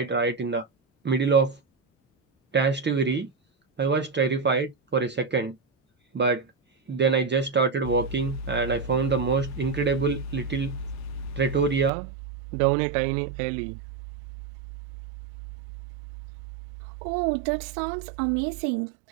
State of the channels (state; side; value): drops out; left; at 11.9 s